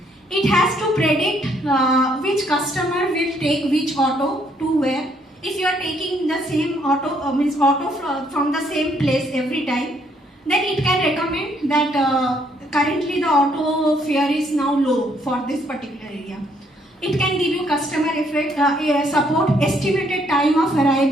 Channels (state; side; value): normal; both; correlation 0.69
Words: It has to predict which customer will take which auto to where. If you are taking the same auto, from the same place every time, then it can recommend that currently the auto fare is now low for this particular area. It can give you customer support, estimated time of